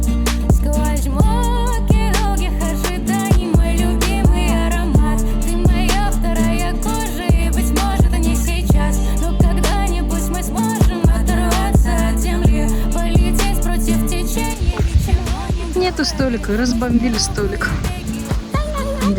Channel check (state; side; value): identical; both; correlation 1.00